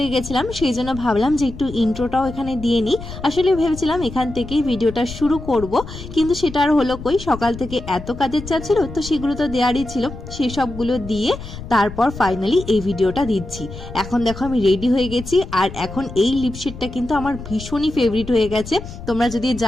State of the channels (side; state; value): left; noise; rumble, 12 dB below the sound